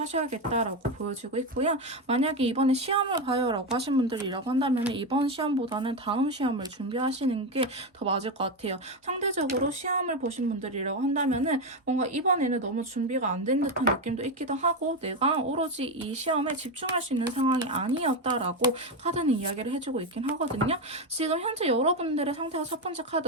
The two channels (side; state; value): both; normal; correlation 0.11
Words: 보여지고 있고요. 만약에 이번에 시험을 봐요 라고 하신 분들이라고 한다면 이번 시험보다는 다음 시험을 준비하시는 게 더 맞을 것 같아요. 상대적으로 시험을 보신 분들이라고 한다면 뭔가 이번에는 너무 준비가 안 된 듯한 느낌도 있기도 하고 내가 오로지 이 시험에 집중할 수 있는 상황이 아니었다라고 카드는 이야기를 해주고 있긴 하거든요. 지금 현재 여러분들의 상태가 첫 번째